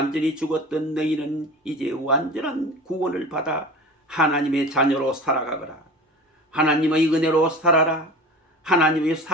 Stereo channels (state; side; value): normal; both; correlation 0.36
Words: 죽었던 너희는 이제 완전한 구원을 받아 하나님의 자녀로 살아가거라. 하나님의 은혜로 살아라. 하나님의